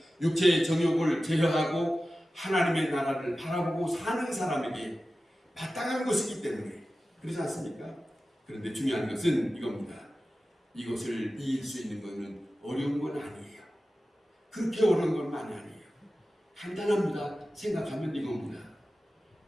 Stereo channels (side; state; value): both; normal; correlation 0.95